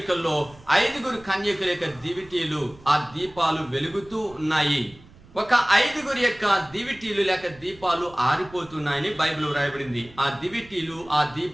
5 కన్యకుల యొక్క దివిటీలు, ఆ దీపాలు వెలుగుతూ ఉన్నాయి. ఒక 5 యొక్క దివిటీలు లేక దీపాలు ఆరిపోతున్నాయని బైబిల్ వ్రాయబడింది. ఆ దివిటీలు, ఆ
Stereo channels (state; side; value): noise; right; rumble, 23 dB below the sound